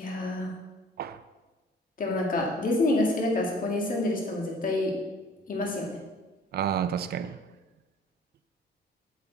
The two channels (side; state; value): both; normal; correlation 0.51